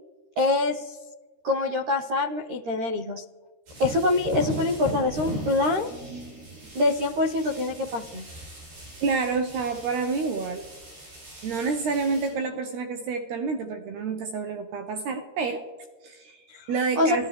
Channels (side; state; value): left; late; 13 ms